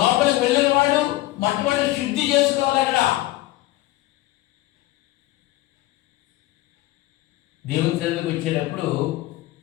వెళ్ళిన వాడు మొట్టమొదటి శుద్ధి చేసుకోవాలి. అక్కడ దేవుని సన్నిధికి వచ్చేటప్పుడు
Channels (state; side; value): quieter; right; 17.5 dB